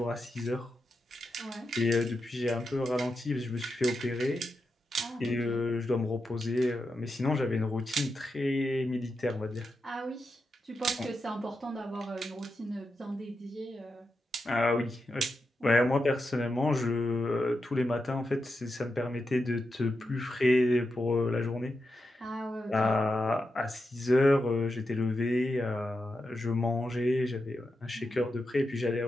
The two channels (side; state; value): both; normal; correlation 0.87